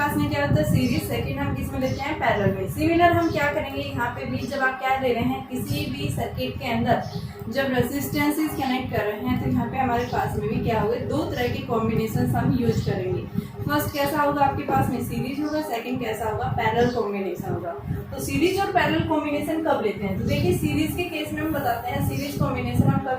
में क्या होता है सीरीज, सेकंड हम किस में लेते हैं, पैरेलल में। सिमिलर हम क्या करेंगे यहाँ पे भी, जब आप क्या ले रहे हैं किसी भी सर्किट के अंदर जब रेसिस्टेंसेस कनेक्ट कर रहे हैं, तो यहाँ पे हमारे पास में भी क्या होगा, 2 तरह के कॉम्बिनेशन हम यूज करेंगे। फर्स्ट कैसा होगा आपके पास में सीरीज होगा, सेकंड कैसा होगा पैरेलल कॉम्बिनेशन होगा। तो सीरीज और पैरेलल कॉम्बिनेशन कब लेते हैं, तो देखिए सीरीज के केस में हम बताते हैं सीरीज कॉम्बिनेशन हम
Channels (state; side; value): identical; both; correlation 1.00